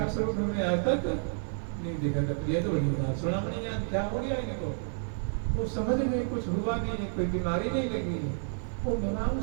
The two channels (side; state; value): left; silent; digital silence